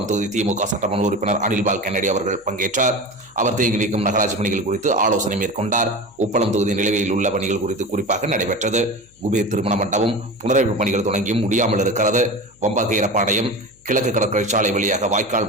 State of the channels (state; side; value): noise; left; hum, 30 dB below the sound